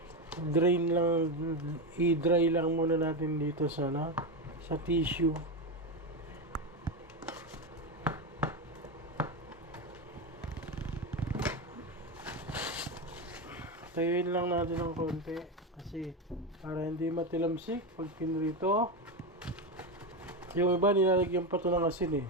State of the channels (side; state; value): both; normal; correlation 0.13